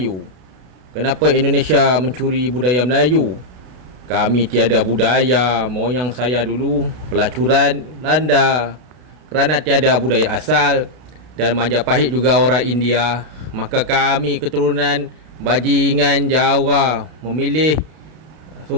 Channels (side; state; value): left; late; 32 ms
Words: Kenapa Indonesia mencuri budaya Melayu? Kami tiada budaya. Moyang saya dulu pelacuran Belanda. Kerana tiada budaya asal dan Majapahit juga orang India, maka kami keturunan bajingan Jawa memilih